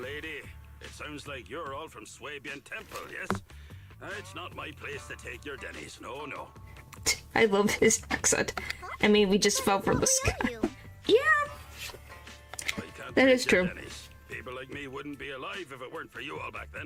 lady, it sounds like you're all from Swabian Temple, yes? It's not my place to take your dennies, no. I love his accent. I mean, we just fell from the What sky. we owe you? Yeah. I can't That take is your true. dennies. People like me wouldn't be alive if it weren't for you all back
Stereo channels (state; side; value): identical; both; correlation 1.00